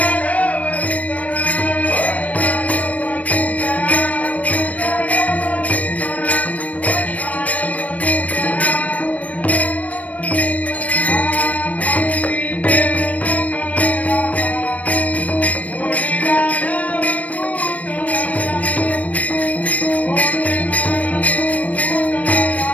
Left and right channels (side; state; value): right; late; 0.068 ms